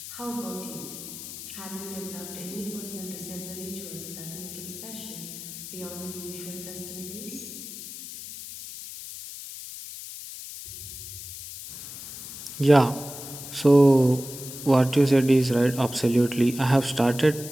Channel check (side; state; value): left; noise; hiss, 11 dB below the sound